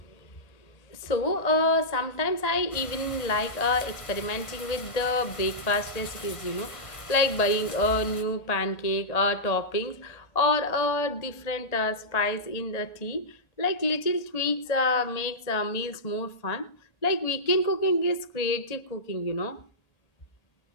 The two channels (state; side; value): late; right; 1.8 ms